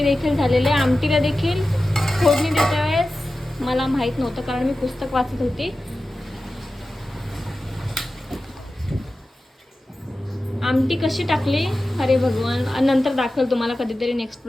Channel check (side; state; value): both; normal; correlation 0.94